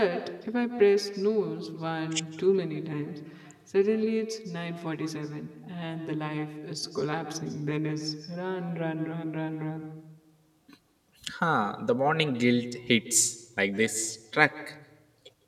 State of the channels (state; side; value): identical; both; correlation 1.00